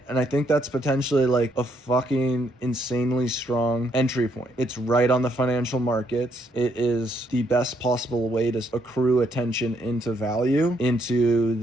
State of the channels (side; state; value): both; normal; correlation 0.73